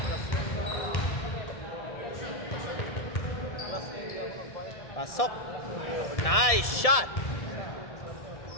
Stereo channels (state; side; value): late; right; 1.7 ms